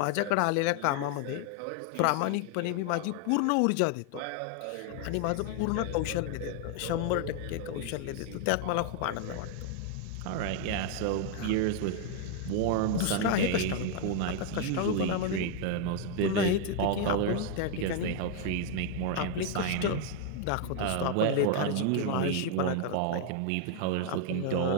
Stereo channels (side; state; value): both; different; correlation 0.00